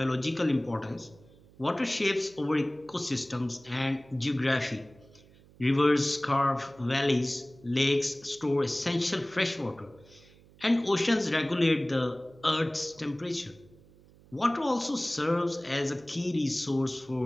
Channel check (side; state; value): right; noise; hum, 26 dB below the sound